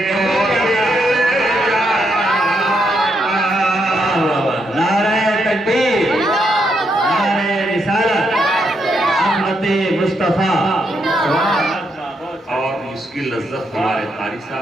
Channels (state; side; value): normal; both; correlation 0.78